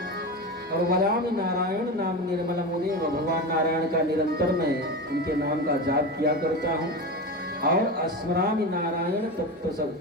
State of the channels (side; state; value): both; normal; correlation 0.23